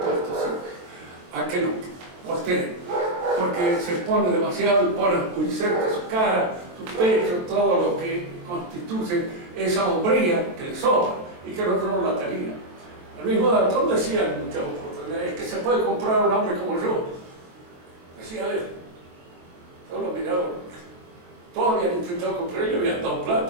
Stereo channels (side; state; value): left; late; 23 ms